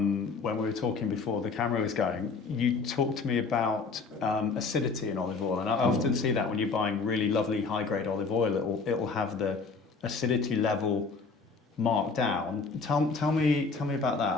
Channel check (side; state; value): right; quieter; 4.5 dB